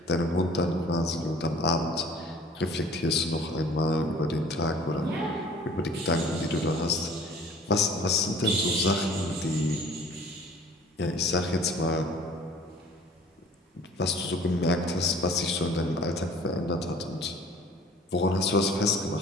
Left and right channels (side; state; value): both; normal; correlation 0.49